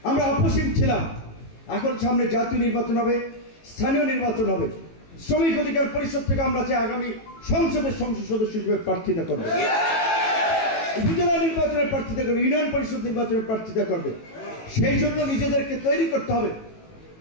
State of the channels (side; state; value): right; late; 18 ms